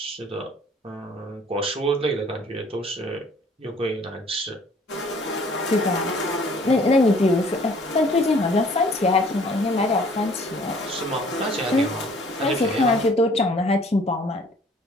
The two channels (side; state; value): both; normal; correlation 0.56